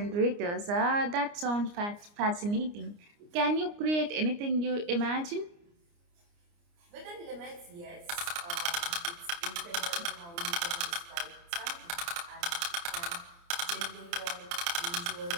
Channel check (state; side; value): late; left; 29 ms